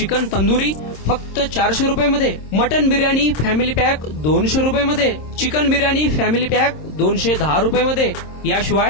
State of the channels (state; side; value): late; right; 26 ms